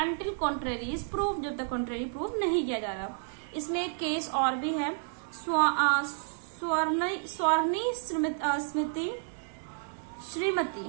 until contrary is proved, जब तक contrary proof नहीं किया जा रहा। इसमें एक केस और भी है, स्वर्णी श्रीमती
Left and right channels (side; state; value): left; silent; 57 dB below the other